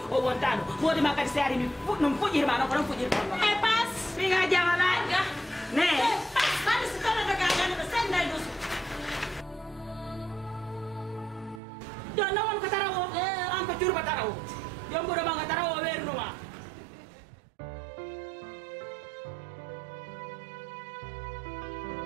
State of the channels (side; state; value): left; drops out; at 11.6 s